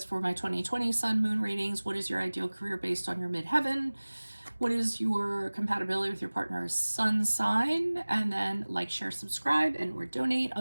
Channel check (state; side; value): inverted; both; correlation -1.00